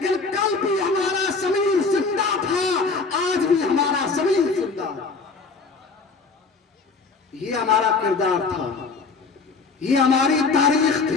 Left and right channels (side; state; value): right; quieter; 4.4 dB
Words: کل بھی ہمارا ضمیر زندہ تھا، آج بھی ہمارا ضمیر زندہ. یہ ہمارا کردار تھا، یہ ہماری تاریخ